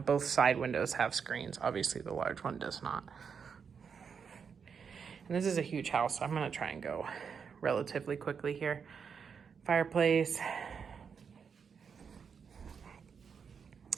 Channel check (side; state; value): left; quieter; 6.4 dB